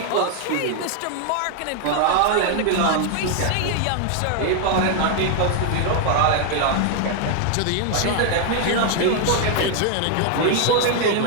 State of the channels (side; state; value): both; different; correlation 0.00